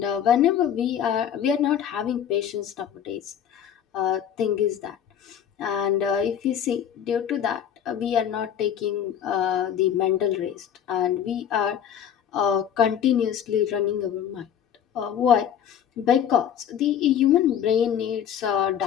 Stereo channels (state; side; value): quieter; right; 9.3 dB